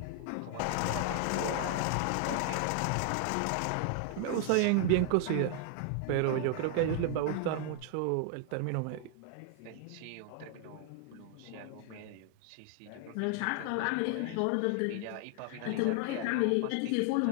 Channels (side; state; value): both; different; correlation 0.00